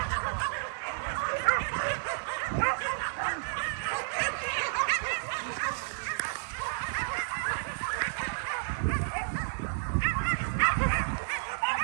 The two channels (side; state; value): left; silent; digital silence